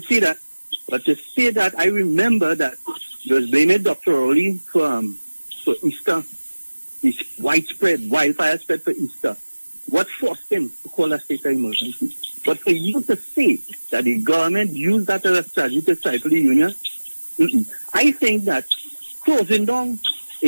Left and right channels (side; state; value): both; inverted; correlation -1.00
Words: see that. But to say that, I remember that you was blaming Dr. Rowley for Easter. This widespread wildfire spread for Easter. What forced him to call a state of emergency? But for you to say that the government used that as a strategy to stifle the union, I think that closing down